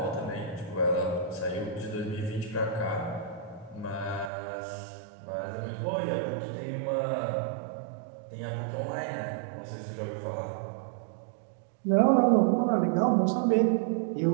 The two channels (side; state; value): left; drops out; at 4.3 s